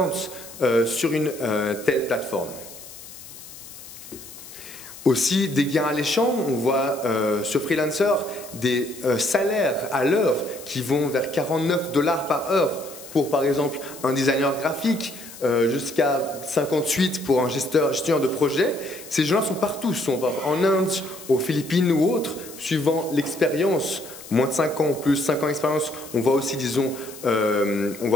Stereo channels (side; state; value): left; noise; hiss, 16 dB below the sound